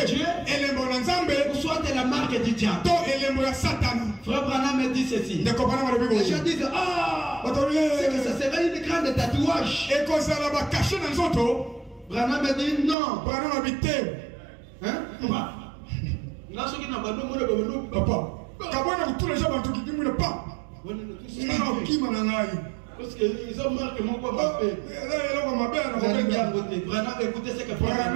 Dieu, ou soit la marque du diable. Frère Branham me dit ceci. Les gens disent, c'est que ça serait une grande tatouage. Branham me dit non. Parce qu'ils ont marqué mon papa. Écoutez ce que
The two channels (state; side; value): drops out; left; at 13.0 s